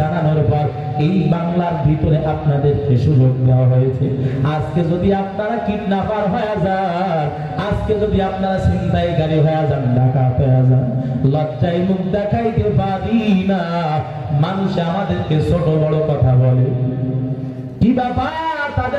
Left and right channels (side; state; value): both; identical; correlation 1.00